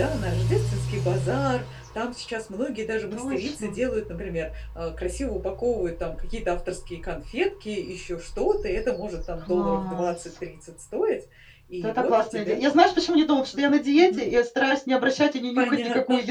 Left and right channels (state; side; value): identical; both; correlation 1.00